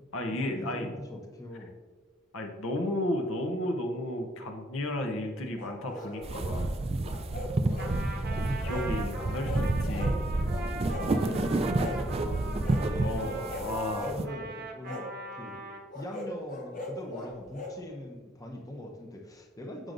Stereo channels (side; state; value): both; normal; correlation 0.70